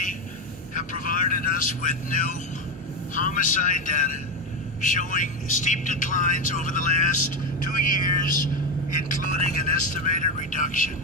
have provided us with new homicide data showing steep declines over the last 2 years, including an estimated reduction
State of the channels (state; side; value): normal; both; correlation 0.13